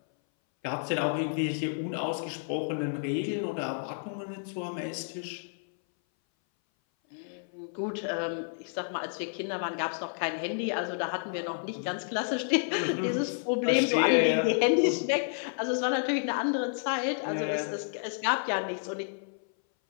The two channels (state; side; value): silent; right; 58 dB below the other